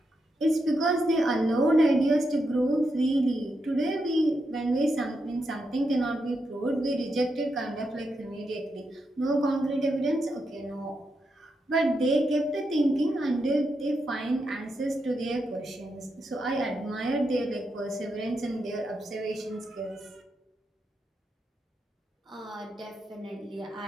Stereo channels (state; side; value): normal; both; correlation 0.84